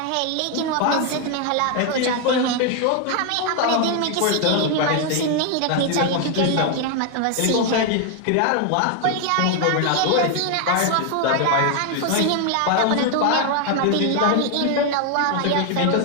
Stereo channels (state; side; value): different; both; correlation 0.01